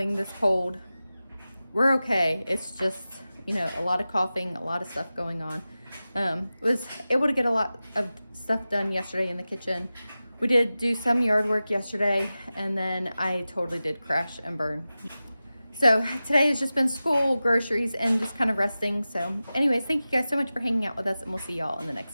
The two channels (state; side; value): inverted; both; correlation -0.95